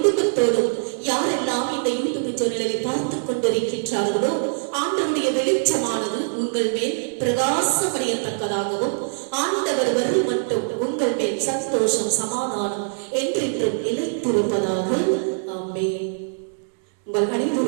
யாரெல்லாம் இந்த யூடியூப் சேனலை பார்த்துக் கொண்டிருக்கின்றார்களோ ஆண்டவருடைய வெளிச்சமானது உங்கள் மேல் பிரகாசமடையத்தக்கதாகவும் ஆண்டவர் வரும் மட்டும் உங்கள் மேல் சந்தோஷம் சமாதானம் என்றென்றும் நிலைத்திருப்பதாக. ஆமென். உங்கள்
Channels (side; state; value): left; silent; digital silence